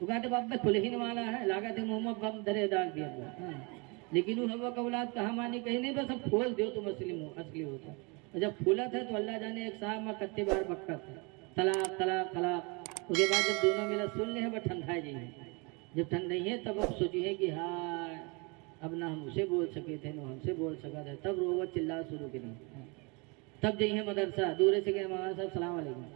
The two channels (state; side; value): quieter; left; 30.0 dB